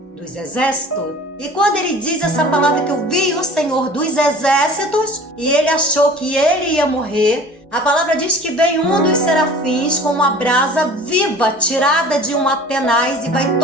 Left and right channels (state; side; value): normal; both; correlation 0.44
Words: dos Exércitos. E quando ele diz essa palavra que eu vi o Senhor dos Exércitos, e ele achou que ele ia morrer, a palavra diz que vem um dos serafins com uma brasa viva tirada de uma tenaz e vai